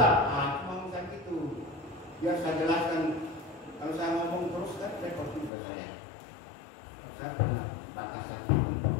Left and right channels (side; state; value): right; drops out; at 5.5 s